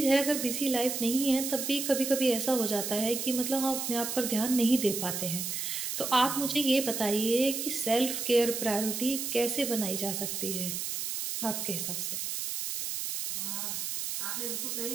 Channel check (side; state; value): right; noise; hiss, 3 dB below the sound